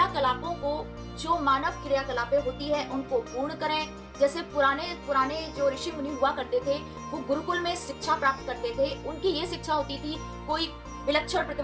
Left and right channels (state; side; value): identical; both; correlation 1.00